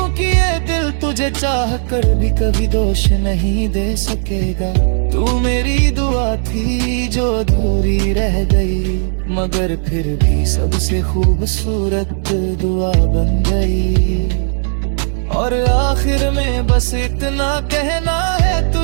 ये दिल तुझे चाह कर भी कभी दोष नहीं दे सकेगा। तू मेरी दुआ थी जो अधूरी रह गई, मगर फिर भी सबसे खूबसूरत दुआ बन गई। और आखिर में बस इतना कहना है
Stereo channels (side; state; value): left; silent; digital silence